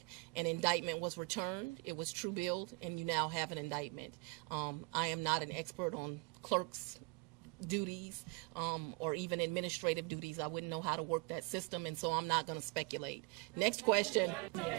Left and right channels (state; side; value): quieter; left; 28.3 dB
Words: An indictment was returned. It was true billed, and you now have an indictment. I am not an expert on clerk's duties or even administrative duties. I wouldn't know how to work that system, and so I'm not going to speculate. Next question.